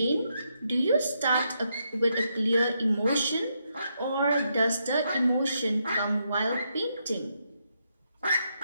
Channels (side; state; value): both; inverted; correlation -0.80